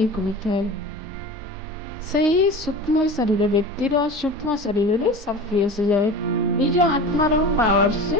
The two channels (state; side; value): normal; both; correlation 0.34